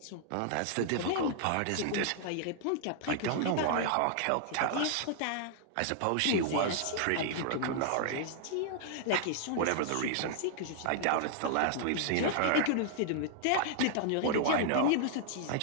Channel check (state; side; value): different; both; correlation -0.01